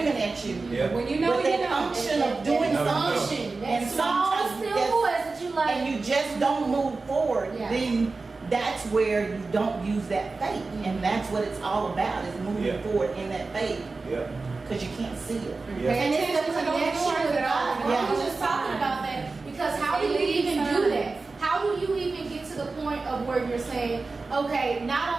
at you. Yeah. When you know, But you that know. unction of doing That something, Unction. That and small, sometimes still that's- voice that you like. and you just don't move forward, Yeah. then that's where you don't use that faith. And that's what it's all about, is moving Yeah. forward in that faith, Yeah. because you can't see it. Yeah. And it's the Attention to those connection doors with that God. open. I Yeah. was just talking about that because how do you even do that? How do you even get to the point of where you're saying, okay,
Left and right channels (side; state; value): left; quieter; 3.8 dB